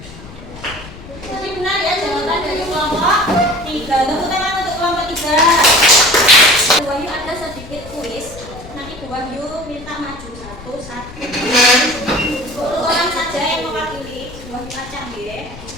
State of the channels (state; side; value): noise; left; rumble, 16 dB below the sound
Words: 3. Bu Wahyu ada sedikit kuis. Nanti Bu Wahyu minta maju satu. Orang saja yang mewakili. Bu Wahyu acak ya.